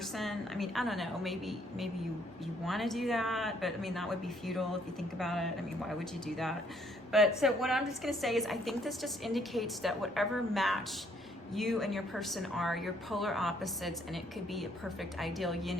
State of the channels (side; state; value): both; normal; correlation 0.67